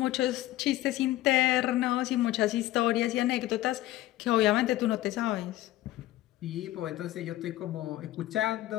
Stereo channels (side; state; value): right; quieter; 15.5 dB